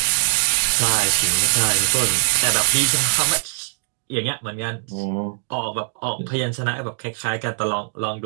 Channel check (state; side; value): silent; left; digital silence